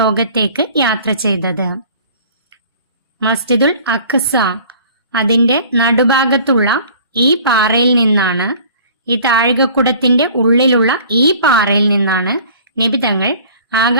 യാത്ര ചെയ്തത്. മസ്ജിദുൽ അഖ്സ, അതിന്റെ നടുഭാഗത്തുള്ള ഈ പാറയിൽ നിന്നാണ്, ഈ താഴികക്കുടത്തിന്റെ ഉള്ളിലുള്ള ഈ പാറയിൽ നിന്നാണ് നബി തങ്ങൾ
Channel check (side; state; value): both; inverted; correlation -0.48